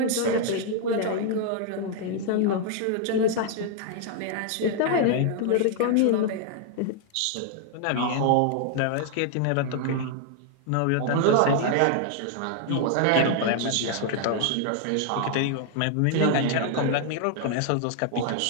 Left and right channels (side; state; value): both; different; correlation 0.00